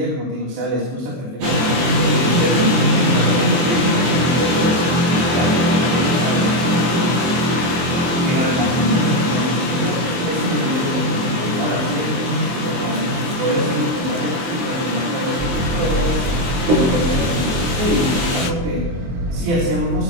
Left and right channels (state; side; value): late; left; 23 ms